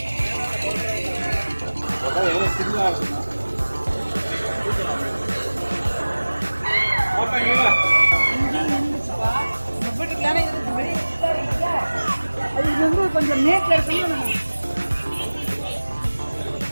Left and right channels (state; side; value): inverted; both; correlation -1.00